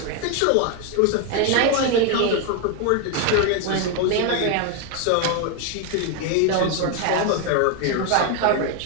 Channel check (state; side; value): different; both; correlation 0.01